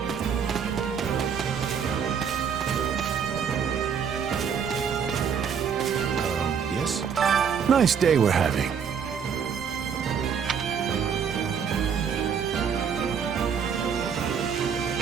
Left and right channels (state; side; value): quieter; left; 7.1 dB